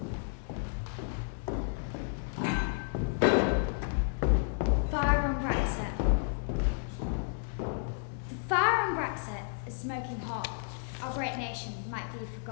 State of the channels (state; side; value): silent; right; digital silence